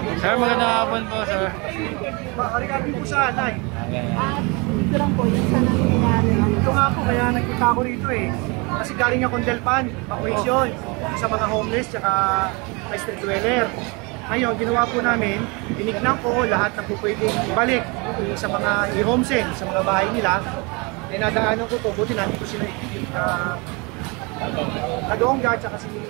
Sir, magandang hapon po, sir. Regarding po sa Nay. At ito lang po, yung sa nangyayari. Ito nga po, kaya nagpunta ako rito eh. Kasi galing akong Delpan, vacation, sa mga homeless, tsaka may street dweller. Ngayon, ginawa po namin, tinignan ko lahat na po pwedeng ibalik sa mga i-homesend, sa mga bahay nila. Dinadaanan ko to, buti namin ko sila Kadongga, tsaka si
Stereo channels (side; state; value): left; quieter; 28.8 dB